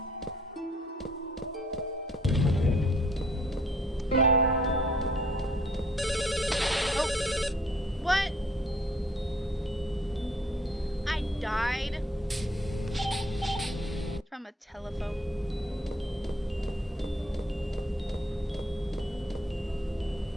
Oh! What? I died? From a telephone.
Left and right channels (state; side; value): normal; both; correlation 0.60